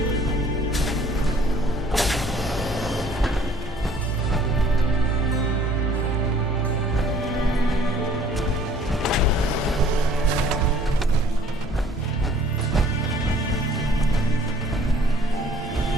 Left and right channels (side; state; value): both; normal; correlation 0.56